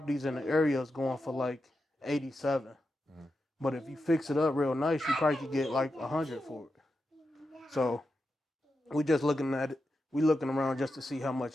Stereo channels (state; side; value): normal; both; correlation 0.88